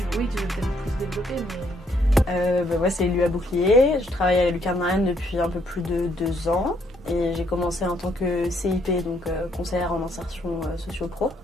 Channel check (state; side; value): normal; both; correlation 0.70